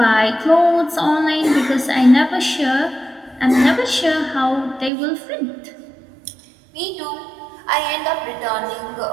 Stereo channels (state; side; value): drops out; left; at 4.9 s